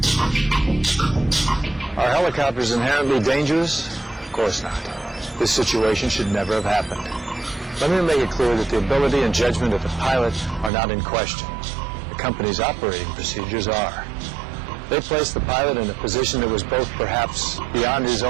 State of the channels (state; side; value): drops out; left; at 10.7 s